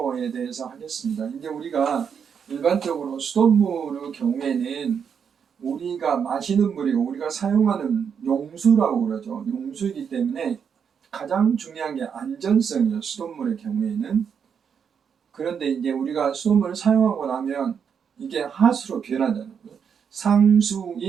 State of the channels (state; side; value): quieter; left; 7.1 dB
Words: 대해서 하겠습니다. 이제 우리가 일반적으로 수돗물의 경우에는 우리가 마시는 물이고 우리가 사용하는 용수라고 그러죠. 용수이기 때문에 가장 중요한 게 안전성이에요. 수돗물의 경우에는. 그런데 이제 우리가 수돗물을 사용하고 나면 이게 하수로 변하잖아요.